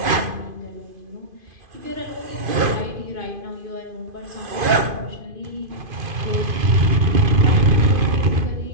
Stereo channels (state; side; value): late; left; 2.5 ms